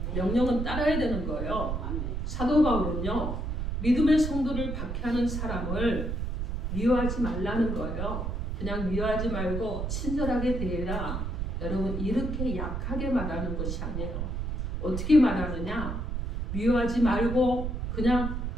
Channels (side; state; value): right; noise; rumble, 3 dB below the sound